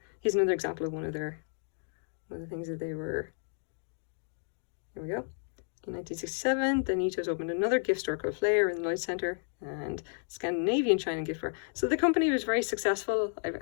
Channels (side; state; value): right; silent; 56 dB below the other